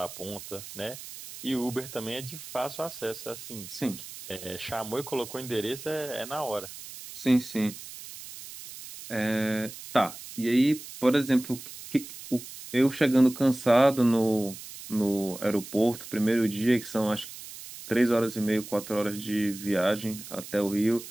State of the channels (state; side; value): noise; right; hiss, 13 dB below the sound